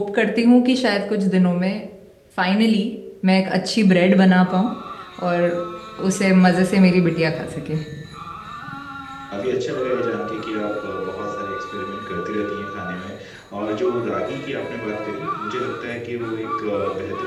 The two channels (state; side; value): identical; both; correlation 1.00